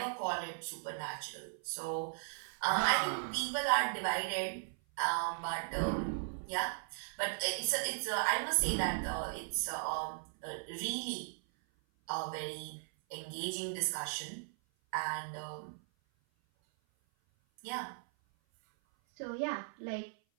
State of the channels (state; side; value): silent; left; 53 dB below the other